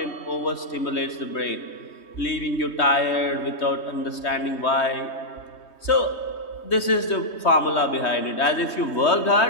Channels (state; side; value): late; right; 3.2 ms